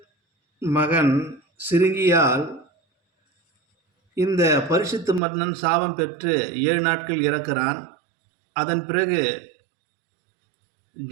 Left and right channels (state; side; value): drops out; left; at 5.2 s